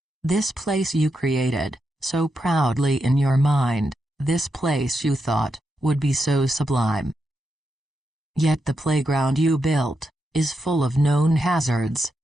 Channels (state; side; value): normal; both; correlation 0.85